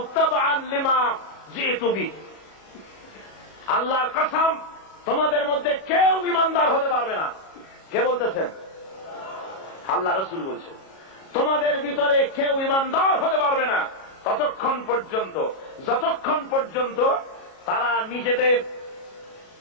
তাবআন লিমা জিতু বিহি। আল্লাহর কসম, তোমাদের মধ্যে কেউ ঈমানদার হতে পারবে না। কে বলতেছেন? আল্লাহ রাসূল বলছেন, তোমাদের ভিতরে কেউ ঈমানদার হতে পারবে না ততক্ষণ পর্যন্ত, যতক্ষণ পর্যন্ত তারা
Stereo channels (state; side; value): late; right; 37 ms